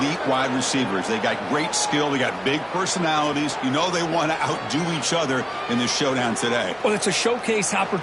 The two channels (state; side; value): identical; both; correlation 1.00